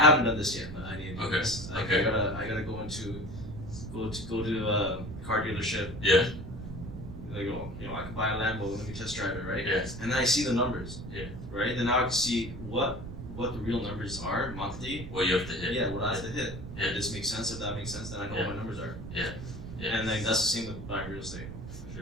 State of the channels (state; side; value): noise; right; rumble, 10 dB below the sound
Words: done this yet, but I need to do this. I gotta go to a car dealership. Yeah. Like, oh, you know, I can buy a Lambo, let me test drive it, right? Yeah. And then I see the numbers. Yeah. Right? Then now I can see what the real numbers are monthly. What you have to hit. Yeah, what I have to hit. Yeah. If this makes sense, if that makes sense, then I know what my numbers are. Yeah. And then that's the same with buying real estate. For